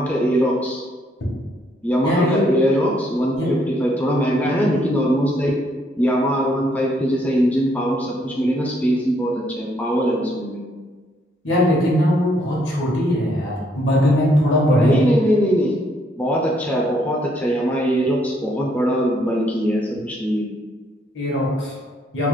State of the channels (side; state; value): both; normal; correlation 0.71